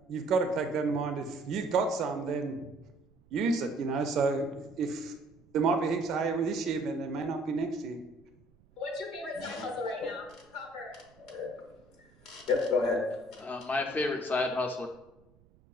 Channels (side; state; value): right; noise; rumble, 29 dB below the sound